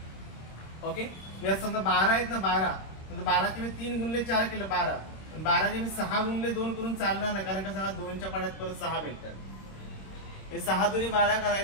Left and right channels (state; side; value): late; right; 26 ms